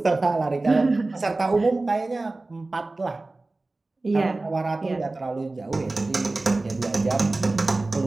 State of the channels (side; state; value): left; quieter; 3.1 dB